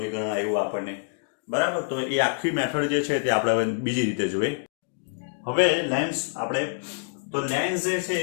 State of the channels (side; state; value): right; silent; digital silence